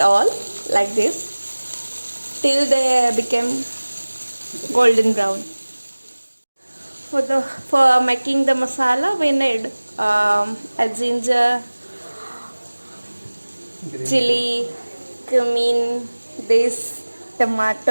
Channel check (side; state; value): both; inverted; correlation -1.00